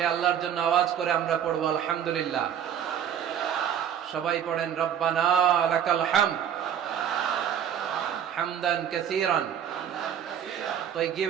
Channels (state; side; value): quieter; left; 9.1 dB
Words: আল্লাহর জন্য আওয়াজ করে আমরা পড়বো আলহামদুলিল্লাহ। সবাই পড়েন, রব্বানা লাকাল হামদ হামদান কাসীরান